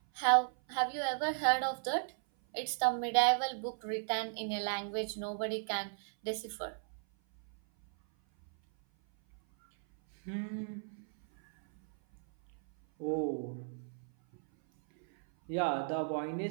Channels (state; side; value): silent; left; 54 dB below the other